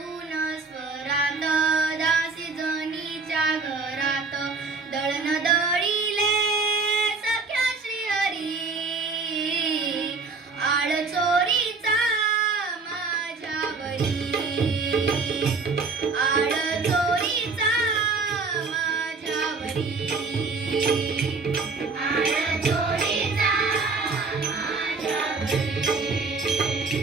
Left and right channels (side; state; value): left; quieter; 4.2 dB